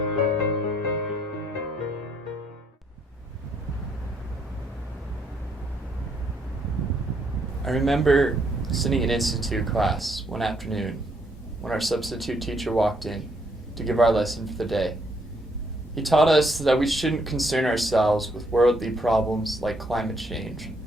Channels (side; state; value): both; normal; correlation 0.71